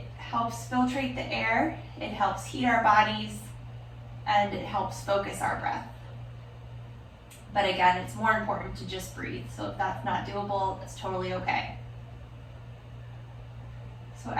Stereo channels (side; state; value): both; identical; correlation 1.00